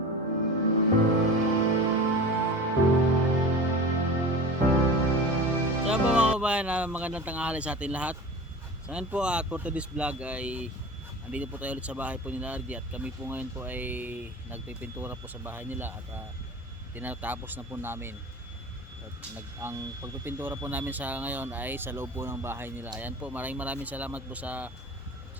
Kaya po mga kabayan, magandang tanghali sa atin lahat. So ngayon po for today's vlog ay andito po tayo ulit sa bahay po nila RJ at kami po ngayon po ay nagpipintura po sa bahay nila at tinatapos na po namin. At ang pagpipintura po namin sa ngayon ay sa loob po ng bahay nila. Ayan po, maraming salamat po sa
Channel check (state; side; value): normal; both; correlation 0.34